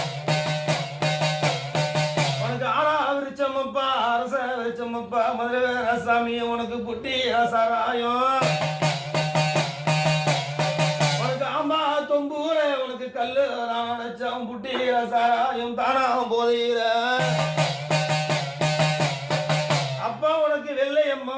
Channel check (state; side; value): identical; both; correlation 1.00